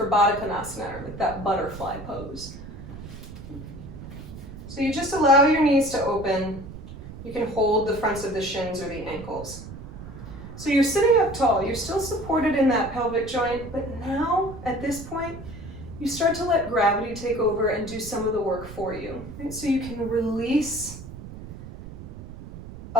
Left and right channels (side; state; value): right; noise; rumble, 13 dB below the sound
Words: Baddha Konasana, or like that butterfly pose. So you just allow your knees to open. You can hold the fronts of the shins or the ankles. So you're sitting up tall. You're still supported in that pelvic joint, but now, at this point, you start to let gravity take over and do some of the work for you. Right? So you can release